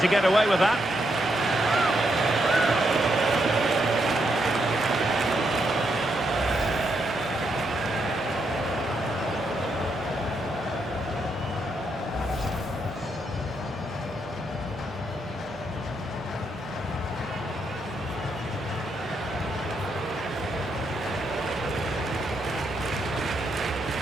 get away with that.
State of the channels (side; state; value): both; normal; correlation 0.79